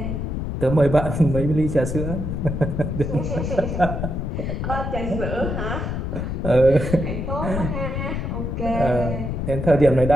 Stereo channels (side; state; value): left; noise; rumble, 3 dB below the sound